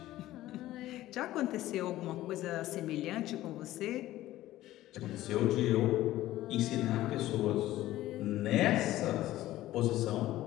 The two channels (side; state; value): right; quieter; 15.2 dB